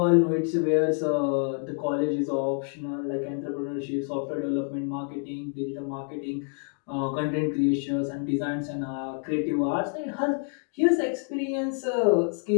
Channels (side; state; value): right; quieter; 39.8 dB